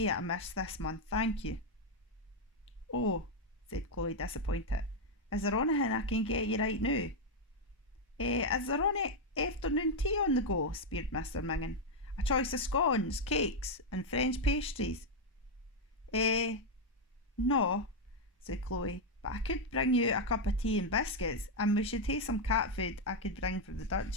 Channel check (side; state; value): both; normal; correlation 0.01